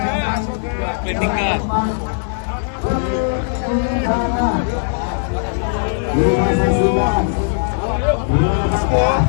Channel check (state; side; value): silent; right; digital silence